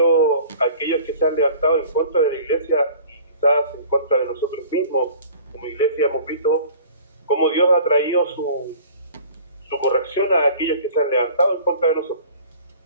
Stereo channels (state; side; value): inverted; both; correlation -0.46